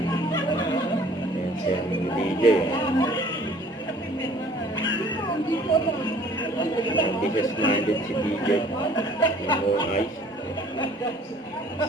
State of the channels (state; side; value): normal; both; correlation 0.54